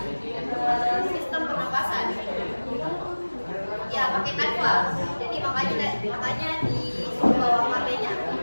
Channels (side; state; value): both; inverted; correlation -1.00